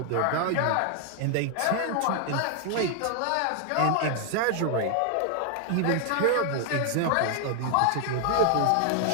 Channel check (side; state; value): both; different; correlation 0.00